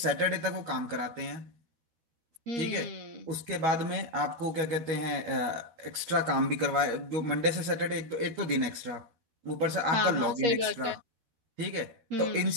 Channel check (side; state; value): left; late; 13 ms